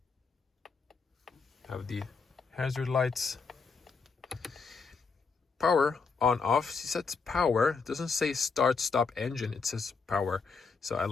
Have the hazard lights. Power on off. See, sets power. It doesn't say start stop engine, it says power. So I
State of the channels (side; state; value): right; quieter; 4.9 dB